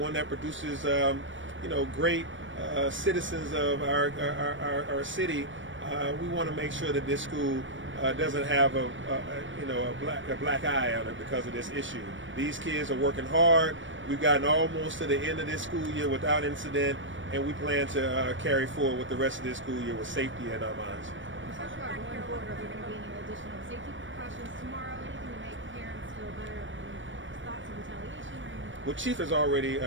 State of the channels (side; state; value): left; late; 0.56 ms